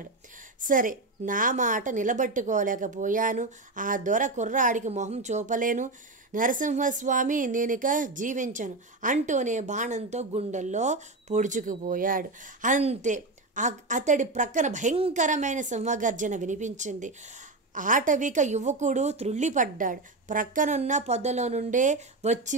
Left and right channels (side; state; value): left; quieter; 3.1 dB